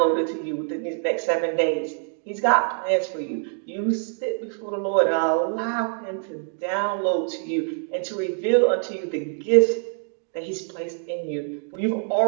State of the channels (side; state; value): left; silent; 55 dB below the other